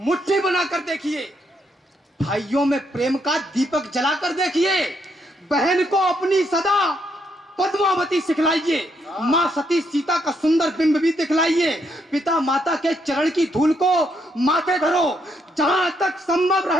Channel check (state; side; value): normal; both; correlation 0.75